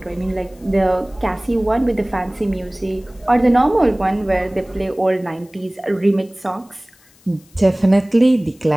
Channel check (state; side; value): noise; left; hiss, 30 dB below the sound